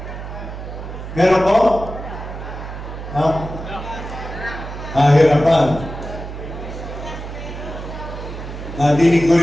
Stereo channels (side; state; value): right; noise; hum, 9 dB below the sound